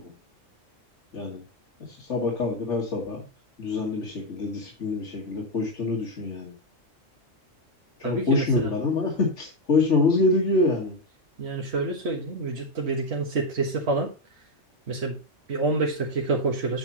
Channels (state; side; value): normal; both; correlation 0.04